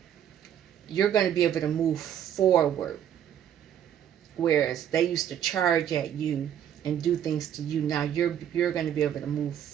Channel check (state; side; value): quieter; left; 9.8 dB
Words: You're going to be able to move forward, whereas they used to charge at you and do things to you. Now you're going to be able to move